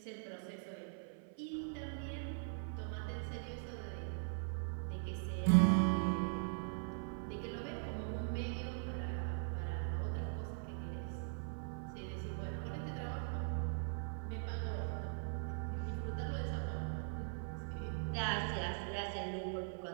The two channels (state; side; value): silent; left; 50 dB below the other